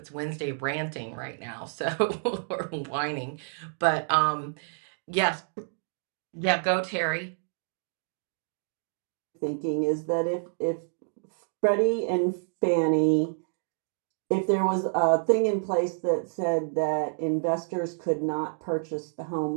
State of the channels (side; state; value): left; silent; digital silence